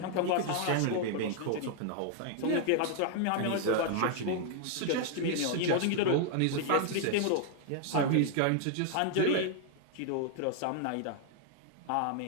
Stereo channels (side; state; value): both; different; correlation 0.00